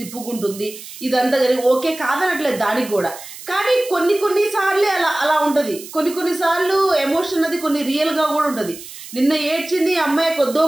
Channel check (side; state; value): right; noise; hiss, 14 dB below the sound